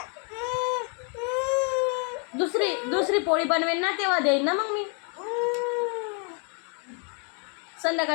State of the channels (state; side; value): quieter; right; 39.3 dB